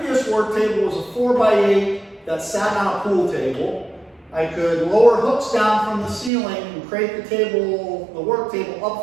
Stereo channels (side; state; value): left; drops out; at 6.3 s